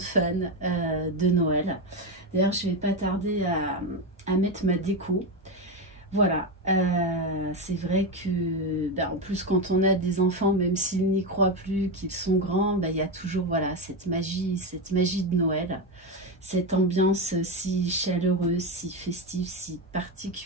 fan de Noël. D'ailleurs, je ne vais pas tarder à mettre ma déco. Voilà, c'est vrai que, en plus quand on a des enfants, même s'ils n'y croient plus, qu'ils sont grands, il y a toujours voilà, cette magie de Noël, cette ambiance si chaleureuse, si festive, si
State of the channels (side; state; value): both; normal; correlation 0.13